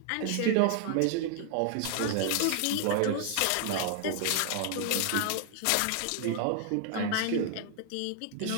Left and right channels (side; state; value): both; different; correlation 0.00